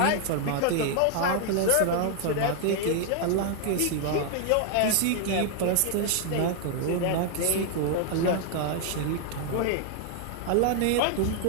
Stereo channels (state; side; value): different; both; correlation 0.00